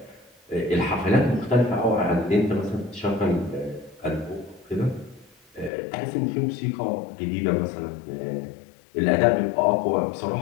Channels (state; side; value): drops out; right; at 5.7 s